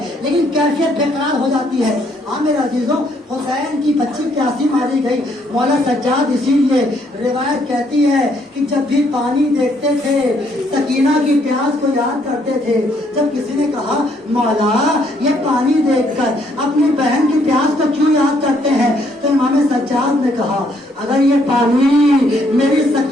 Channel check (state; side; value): normal; both; correlation 0.69